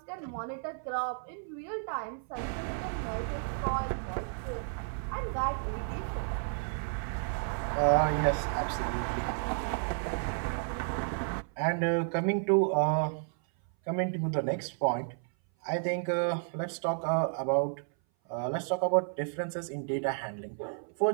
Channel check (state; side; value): silent; left; 56 dB below the other